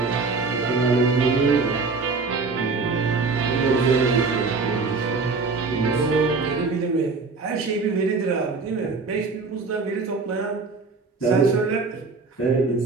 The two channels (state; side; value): quieter; left; 4.2 dB